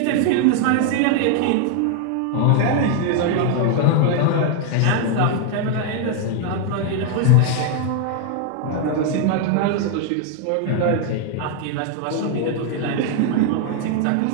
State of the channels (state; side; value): different; both; correlation 0.00